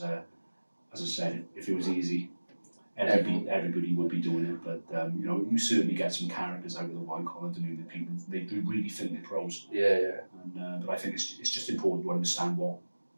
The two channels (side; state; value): both; inverted; correlation -1.00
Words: as I said, if it was easy, everybody would be doing it. But you know, you certainly get some characters out of the white collar doing the people. They do really think they're pros. And but I think it's just important to understand